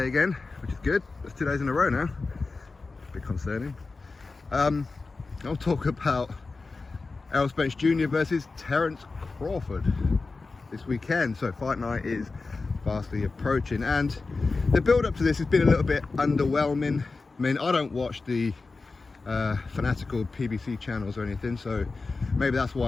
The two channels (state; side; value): quieter; right; 3.9 dB